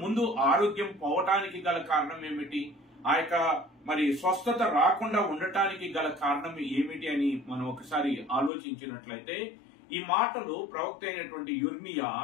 ముందు ఆరోగ్యం పోవటానికి గల కారణం ఏమిటి, ఆ యొక్క మరి స్వస్థత రాకుండా ఉండటానికి గల కారణం ఏమిటి అని మనం ఒకసారి ఆలోచించినట్లయితే ఈ మాటలు ప్రవక్త అయినటువంటి యిర్మీయా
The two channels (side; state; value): right; drops out; at 8.5 s